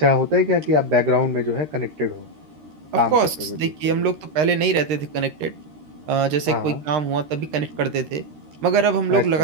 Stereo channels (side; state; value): left; late; 13 ms